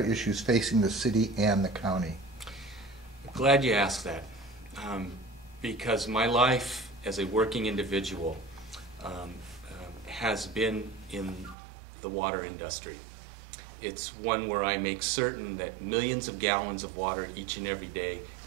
facing the city and the county? Glad you asked that, because my life as a working individual has been in the water industry. It's one where I make certain that millions of gallons of water each and every day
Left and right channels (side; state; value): left; drops out; at 11.6 s